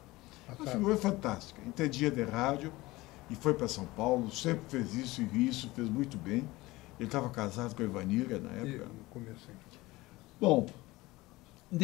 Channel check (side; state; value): right; quieter; 20.0 dB